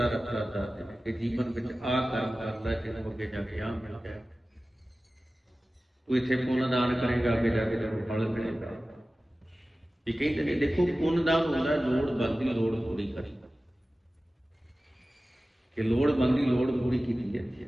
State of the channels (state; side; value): normal; both; correlation 0.96